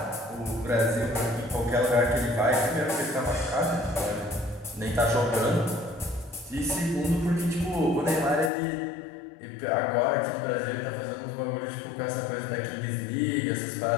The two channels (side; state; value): right; drops out; at 8.5 s